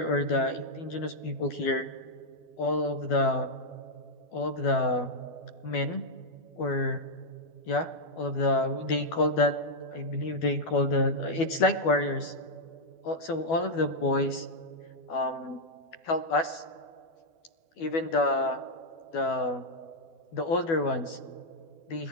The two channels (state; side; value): late; right; 12 ms